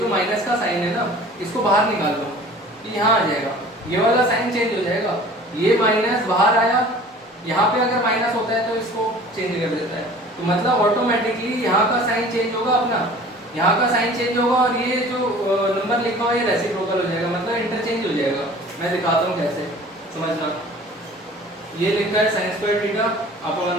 माइनस का साइन है ना, इसको बाहर निकाल लो, ये यहाँ आ जाएगा, ये वाला साइन चेंज हो जाएगा, ये माइनस बाहर आया, यहाँ पे अगर माइनस होता है तो इसको चेंज कर देता है। तो मतलब ऑटोमेटिकली यहाँ का साइन चेंज होगा, अपना यहाँ का साइन चेंज होगा, और ये जो नंबर लिखा हुआ है ये रेसिप्रोकल हो जाएगा, मतलब इंटरचेंज हो जाएगा। मैं दिखाता हूँ कैसे, समझना। ये लिखा है sin स्क्वायर थीटा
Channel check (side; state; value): both; normal; correlation 0.45